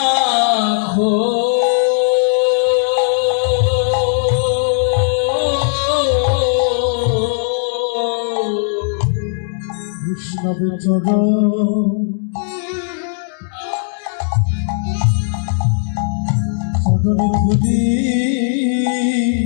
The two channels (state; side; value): silent; right; digital silence